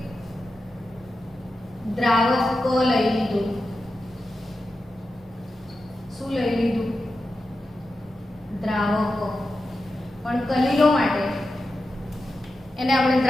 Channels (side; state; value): both; normal; correlation 0.91